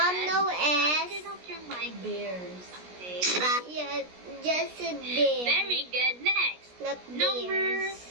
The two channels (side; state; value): left; late; 17 ms